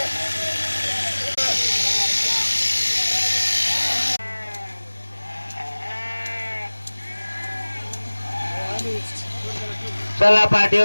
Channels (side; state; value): both; inverted; correlation -1.00